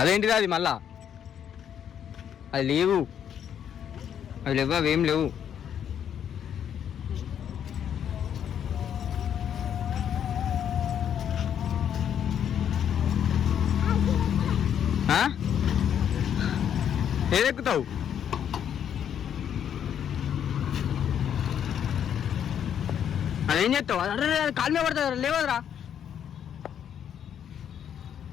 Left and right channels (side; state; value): right; quieter; 9.1 dB